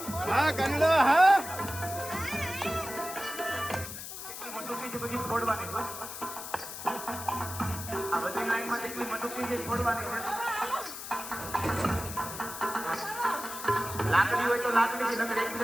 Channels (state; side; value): noise; left; hiss, 9 dB below the sound